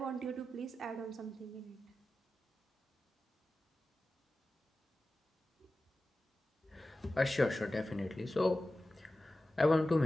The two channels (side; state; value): both; normal; correlation 0.94